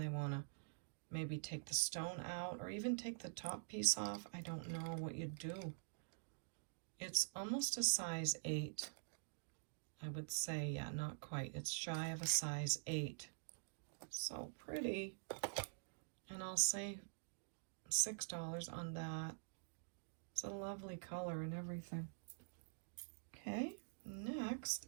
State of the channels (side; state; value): left; silent; digital silence